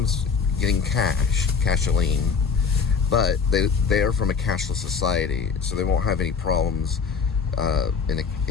getting casholine. But they are from a cashless society, so they won't have any problems in a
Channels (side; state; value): right; quieter; 5.8 dB